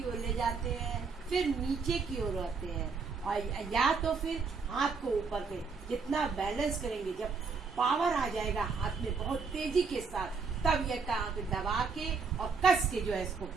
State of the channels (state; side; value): quieter; left; 5.0 dB